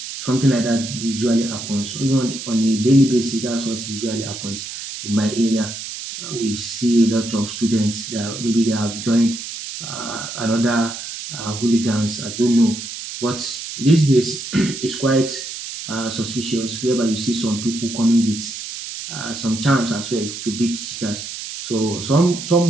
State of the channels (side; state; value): right; noise; hiss, 8 dB below the sound